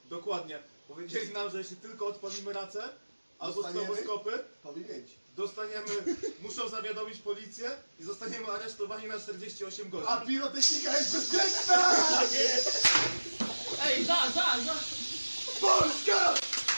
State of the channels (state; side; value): inverted; both; correlation -1.00